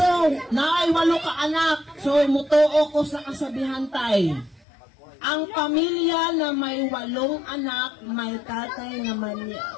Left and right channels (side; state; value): right; drops out; at 4.7 s